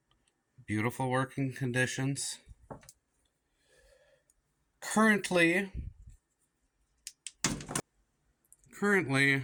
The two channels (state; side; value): identical; both; correlation 1.00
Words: beautiful working conditions. Currently,